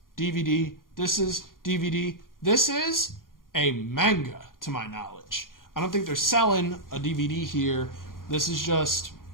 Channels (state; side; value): late; right; 0.91 ms